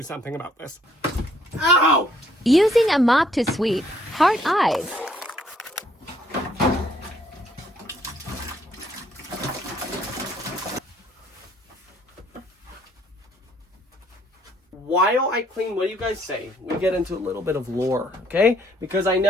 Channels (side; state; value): both; normal; correlation 0.65